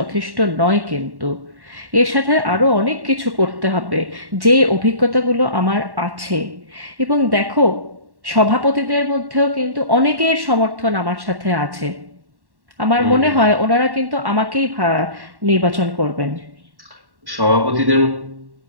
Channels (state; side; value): late; left; 1.1 ms